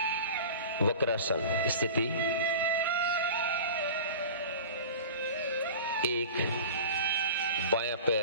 Vakrasana स्थिति। एक बायां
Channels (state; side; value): inverted; both; correlation -0.36